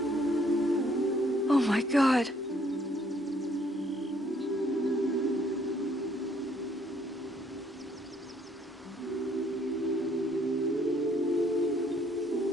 Oh my God.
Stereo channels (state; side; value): normal; both; correlation 0.65